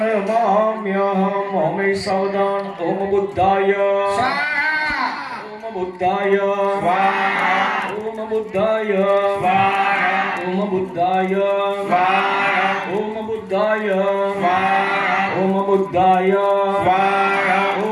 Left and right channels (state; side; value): identical; both; correlation 1.00